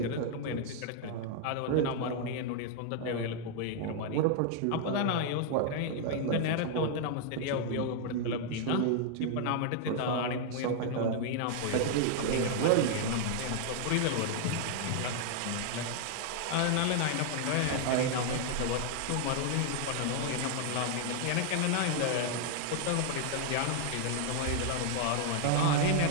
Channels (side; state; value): both; different; correlation 0.00